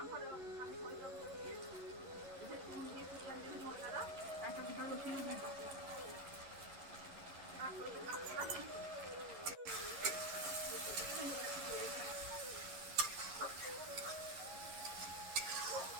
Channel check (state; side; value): late; left; 11 ms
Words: একটা গোটা রসুন দিয়ে দেবো।